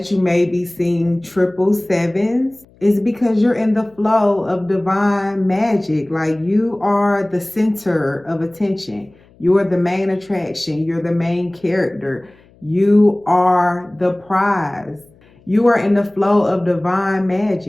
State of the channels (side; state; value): left; noise; hum, 29 dB below the sound